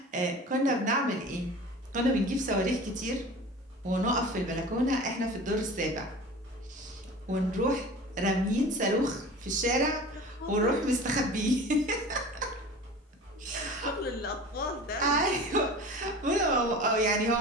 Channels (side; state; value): both; normal; correlation 0.38